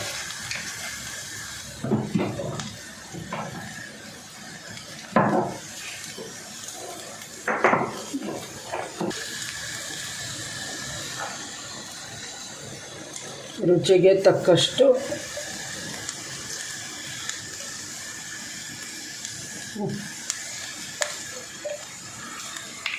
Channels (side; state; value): both; identical; correlation 1.00